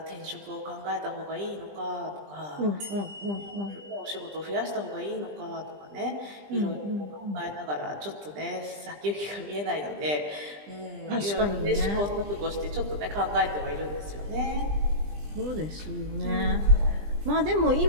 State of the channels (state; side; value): late; left; 20 ms